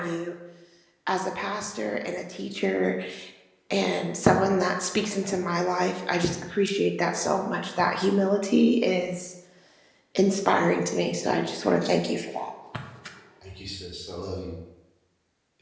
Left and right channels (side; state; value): both; identical; correlation 1.00